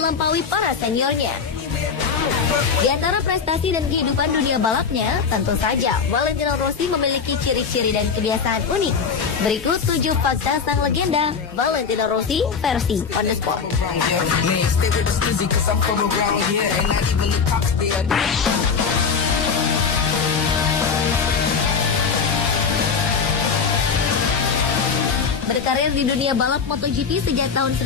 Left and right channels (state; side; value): quieter; right; 5.8 dB